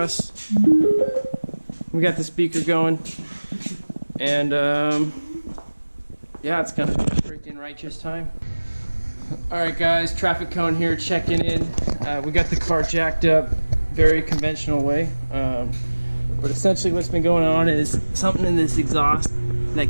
We got the speaker going. And yeah, it's gonna be a freaking righteous time. Alright guys, traffic cone here, checking in. We got the car jacked up, very conventional way. But essentially what's been going on is something in this exhaust that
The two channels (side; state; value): both; inverted; correlation -1.00